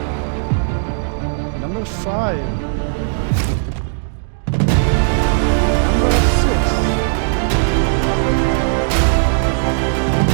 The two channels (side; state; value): left; silent; digital silence